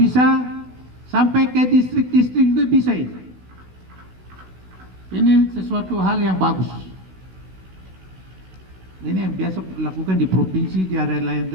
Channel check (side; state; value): left; late; 16 ms